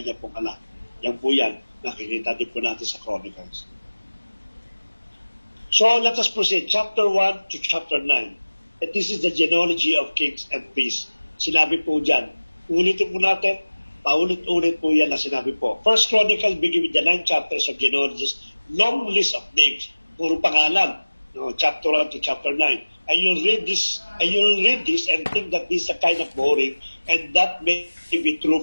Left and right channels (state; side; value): inverted; both; correlation -1.00